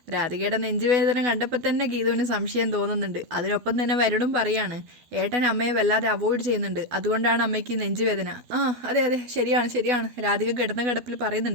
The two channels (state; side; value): late; left; 12 ms